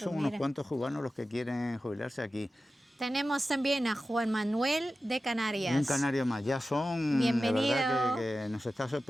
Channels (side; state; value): both; normal; correlation 0.94